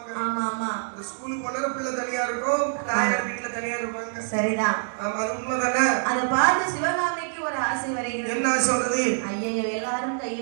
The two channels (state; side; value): silent; left; digital silence